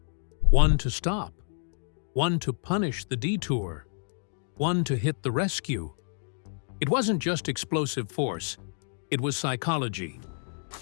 One to stop, one to punish the detour, one to hit the rescue. It wasn't just explosive force, it was psychology.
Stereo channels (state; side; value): silent; right; 55 dB below the other